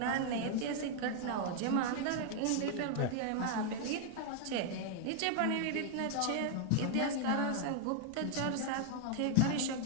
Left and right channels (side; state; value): both; different; correlation 0.00